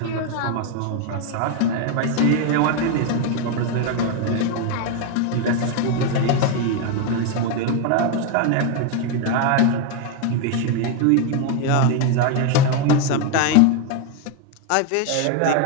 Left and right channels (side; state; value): both; different; correlation 0.01